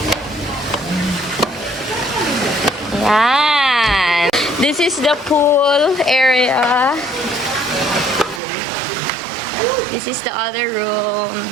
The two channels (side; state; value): left; drops out; at 8.4 s